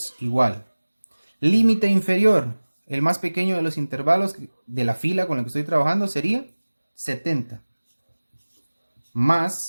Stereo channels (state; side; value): inverted; both; correlation -1.00